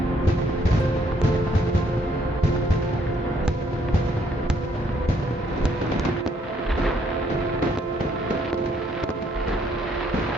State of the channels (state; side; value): normal; both; correlation 0.68